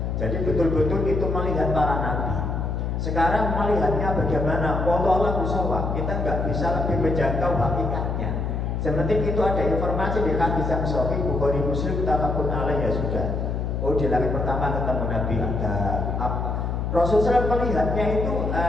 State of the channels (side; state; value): left; noise; hum, 1 dB below the sound